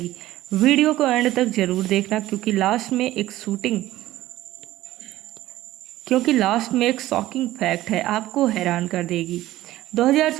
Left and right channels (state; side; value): quieter; left; 15.4 dB